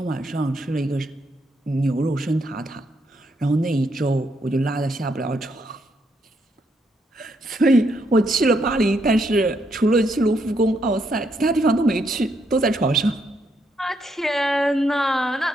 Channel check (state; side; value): normal; both; correlation 0.76